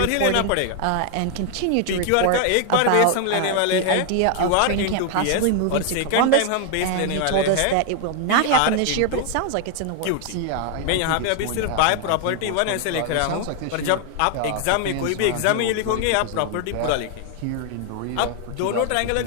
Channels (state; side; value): different; both; correlation 0.00